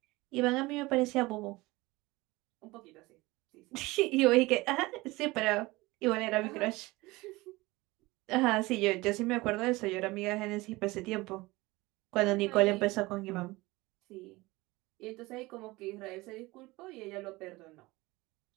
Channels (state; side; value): quieter; left; 21.3 dB